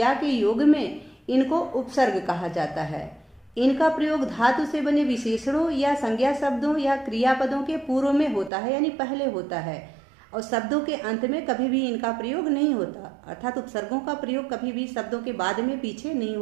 के योग में इनको उपसर्ग कहा जाता है। इनका प्रयोग धातु से बने विशेषणों या संज्ञा शब्दों या क्रियापदों के पूर्व में होता है, यानी पहले होता है, और शब्दों के अंत में कभी भी इनका प्रयोग नहीं होता। अर्थात उपसर्गों का प्रयोग कभी भी शब्दों के बाद में पीछे नहीं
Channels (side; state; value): left; drops out; at 8.5 s